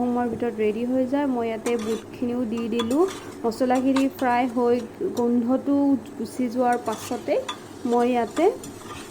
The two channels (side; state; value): both; identical; correlation 1.00